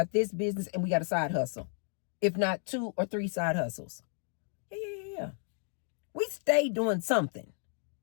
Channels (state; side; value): silent; right; 56 dB below the other